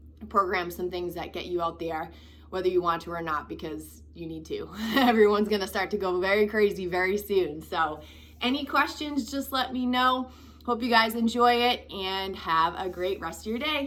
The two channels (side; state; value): both; identical; correlation 1.00